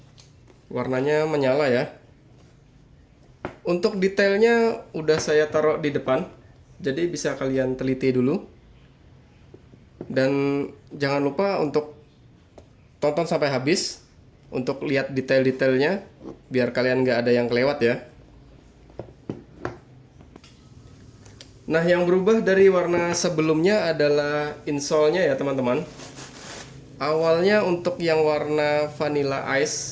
Warnanya menyala ya. Untuk detailnya udah saya taruh di depan. Jadi bisa kalian teliti dulu. Dan jangan lupa untuk tonton sampai habis untuk lihat detail-detailnya biar kalian nggak ada yang kelewat ya. Nah, yang berubah dari warna sebelumnya adalah insole-nya ya teman-teman. Awalnya untuk yang warna Vanilla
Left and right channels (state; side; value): identical; both; correlation 1.00